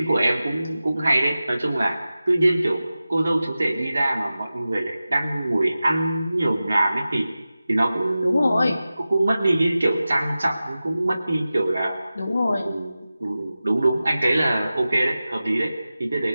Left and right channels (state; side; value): inverted; both; correlation -0.95